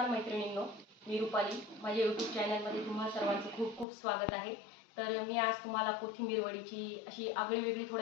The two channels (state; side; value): drops out; right; at 3.9 s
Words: मैत्रिणींनो, मी रुपाली. माझ्या यूट्यूब चॅनलमध्ये तुम्हा सर्वांचं खूप खूप स्वागत आहे. तर मी आज तुम्हाला कोथिंबीर वडीची अशी आगळीवेगळी